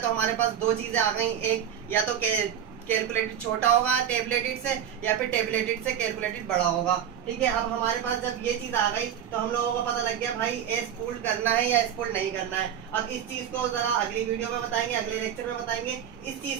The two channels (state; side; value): quieter; left; 9.4 dB